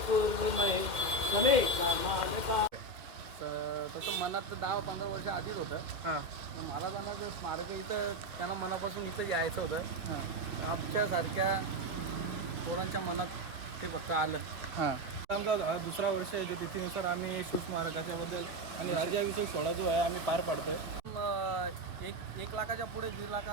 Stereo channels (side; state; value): left; late; 1.9 ms